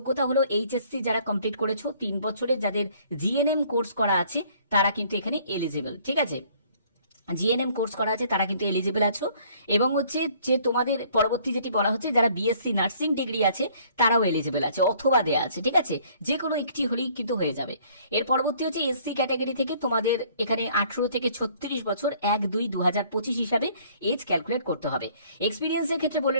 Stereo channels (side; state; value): both; inverted; correlation -0.59